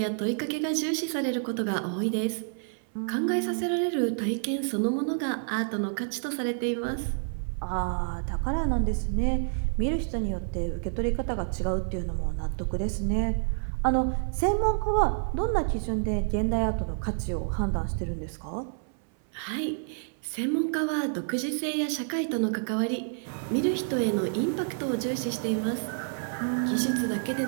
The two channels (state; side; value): silent; left; 59 dB below the other